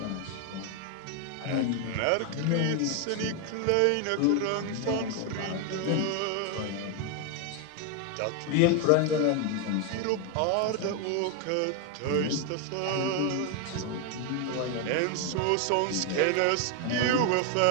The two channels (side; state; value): both; different; correlation 0.01